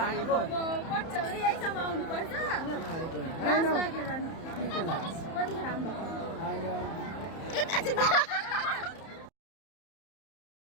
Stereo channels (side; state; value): right; late; 31 ms